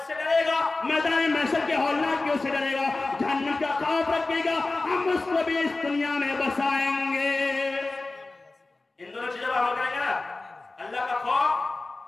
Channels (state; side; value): quieter; right; 3.3 dB